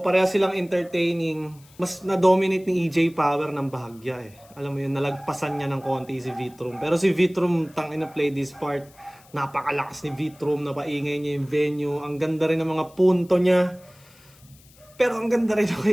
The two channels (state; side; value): noise; left; hiss, 27 dB below the sound